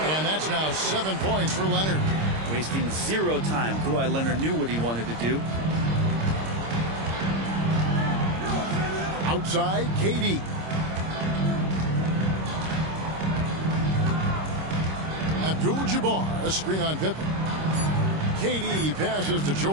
And that's now 7 points for Leonard. Wasting 0 time. Kawhi Leonard knew what he wanted to do. Outside, KD. Abdul-Jabbar, a screen on Pippen. KD passes to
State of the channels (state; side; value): late; left; 26 ms